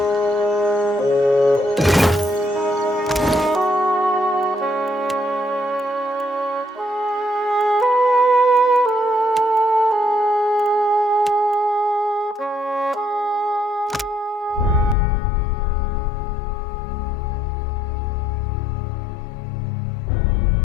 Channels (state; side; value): drops out; right; at 15.0 s